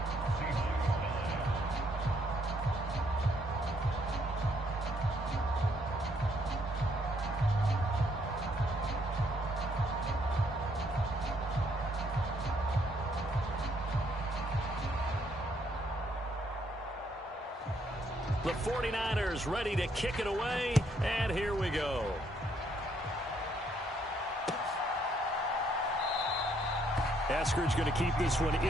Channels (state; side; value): normal; both; correlation 0.70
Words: The 49ers ready to kick it away, and here we go. Eskridge going to keep this one